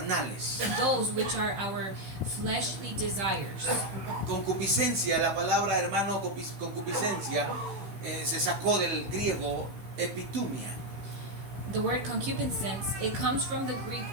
those which are our fleshly desires. Concupiscencia, la palabra, hermano, concupiscencia, se sacó del griego epitumia. The word concupiscence, it comes from the Greek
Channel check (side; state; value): left; late; 15 ms